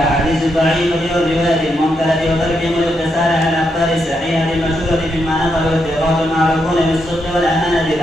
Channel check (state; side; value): normal; both; correlation 0.81